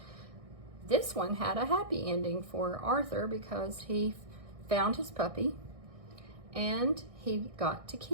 This one had a happy ending for Arthur because he found his puppy and he got to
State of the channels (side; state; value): left; late; 1.6 ms